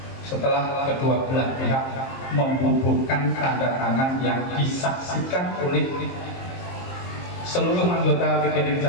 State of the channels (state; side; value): late; right; 23 ms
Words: setelah kedua belah pihak membubuhkan tanda tangan yang disaksikan oleh seluruh anggota PGRI